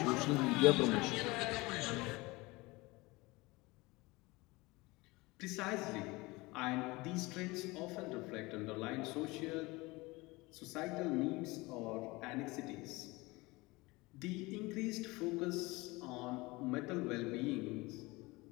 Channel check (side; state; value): right; quieter; 22.8 dB